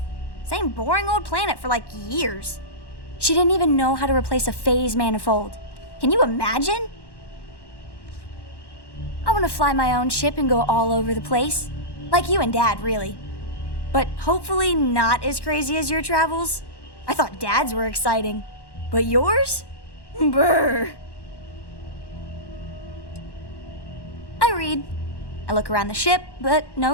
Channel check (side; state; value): right; late; 1.1 ms